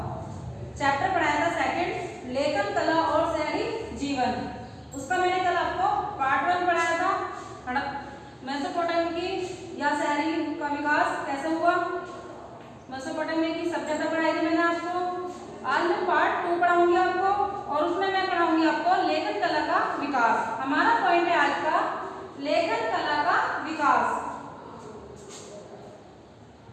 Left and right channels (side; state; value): both; identical; correlation 1.00